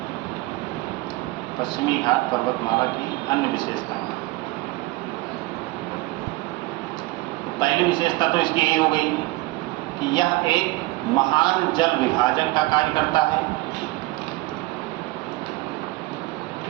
पश्चिमी घाट पर्वतमाला की अन्य विशेषताएं। तो पहली विशेषता तो इसकी यही हो गई कि यह एक महान जल विभाजक का कार्य करता है।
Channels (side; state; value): left; quieter; 20.6 dB